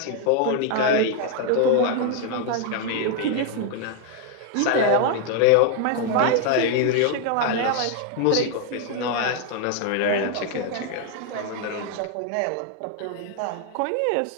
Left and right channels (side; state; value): both; different; correlation 0.00